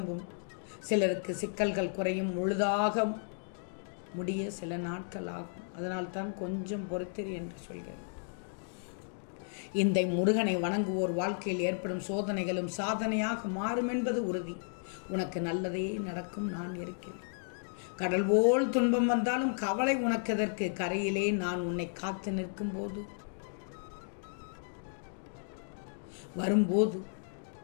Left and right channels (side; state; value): right; silent; digital silence